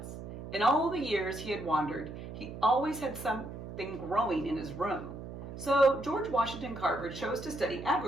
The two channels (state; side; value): noise; right; hum, 10 dB below the sound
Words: In all the years he had wandered, he always had something growing in his room. So George Washington Carver chose to study